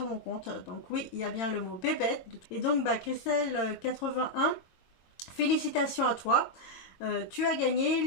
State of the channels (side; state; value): right; late; 22 ms